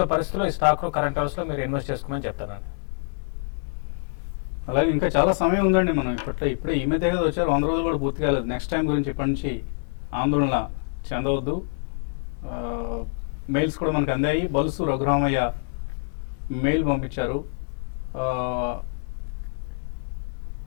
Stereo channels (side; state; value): right; silent; digital silence